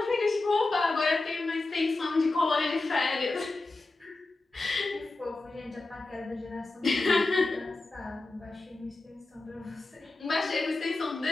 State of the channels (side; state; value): right; quieter; 3.2 dB